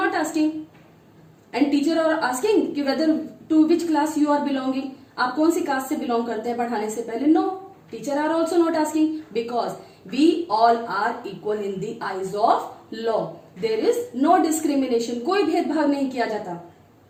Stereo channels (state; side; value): identical; both; correlation 1.00